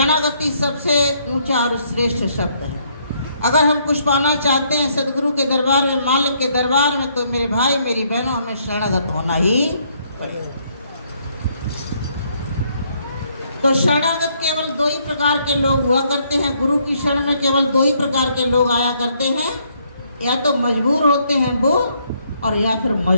सबसे ऊंचा और श्रेष्ठ शब्द है। अगर हम कुछ पाना चाहते हैं सदगुरु के दरबार में, मालिक के दरबार में, तो मेरे भाई मेरी बहनों हमें शरणागत होना ही पड़ेगा। तो शरणागत केवल दो ही प्रकार के लोग हुआ करते हैं। गुरु की शरण में केवल दो ही प्रकार के लोग आया करते हैं, या तो मजबूर होते हैं वो, और या फिर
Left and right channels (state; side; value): inverted; both; correlation -0.70